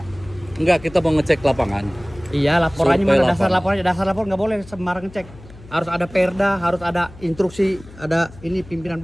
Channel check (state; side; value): noise; left; hum, 20 dB below the sound